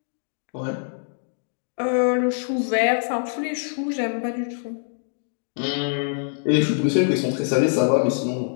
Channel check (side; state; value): right; silent; digital silence